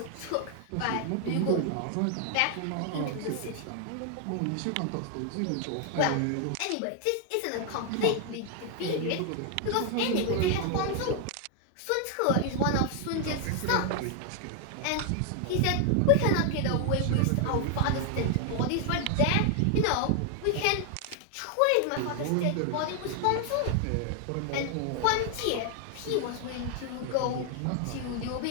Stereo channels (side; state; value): both; different; correlation 0.00